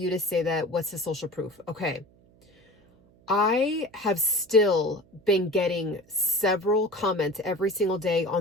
to say that? What's the social proof? Okay. I have still been getting several comments every single day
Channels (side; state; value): right; noise; hum, 29 dB below the sound